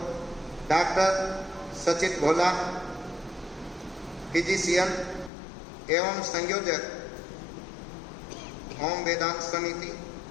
डॉक्टर सचित भोला, फिजिशियन एवं संयोजक ओम वेदांत समिति,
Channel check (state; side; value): drops out; right; at 5.3 s